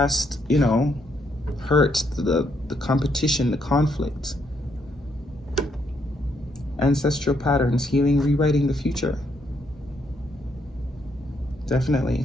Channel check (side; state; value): both; normal; correlation 0.75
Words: you know, hurt, the competition, the conflict. Ancestral patterns, healing, rewriting the future. Definitely.